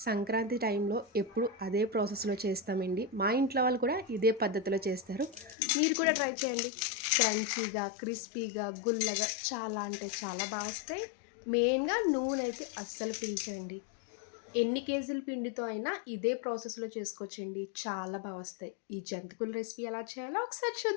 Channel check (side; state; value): right; drops out; at 5.6 s